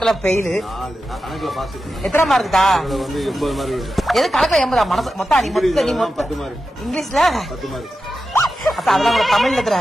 பெயிலு. எத்தனை மார்க்குதா? எது கணக்குல 80? மனசு மொத்தம் இங்கிலீஷ்ல 10 மார்க். அத்தா அதெல்லாம் கூட தமிழ்ல எத்தனை?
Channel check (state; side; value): normal; both; correlation 0.91